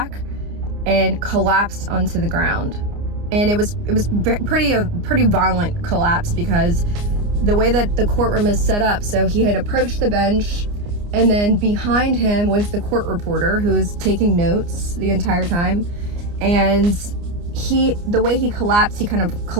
and collapsed onto the ground. And it was pretty violent collapse, because the way that the courtroom is set up, so he had approached the bench, and then behind him was the court reporter who was taking notes the entire time. And the way he collapsed, he kind of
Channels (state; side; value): late; left; 29 ms